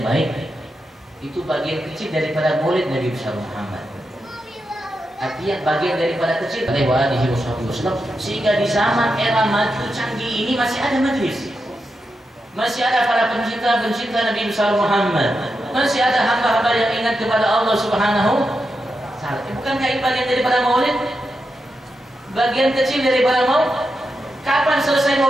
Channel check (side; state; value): both; normal; correlation 0.87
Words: baik, itu bagian kecil daripada maulid Nabi besar Muhammad. Artinya bagian daripada kecil sehingga di zaman era maju canggih ini masih ada majelis, masih ada para pencinta Nabi besar Muhammad, masih ada hamba-hamba yang ingat kepada Allah Subhanahu wa Ta'ala. Bukankah ini bagian daripada maulid? Bagian kecil daripada maulid. Kapan selesai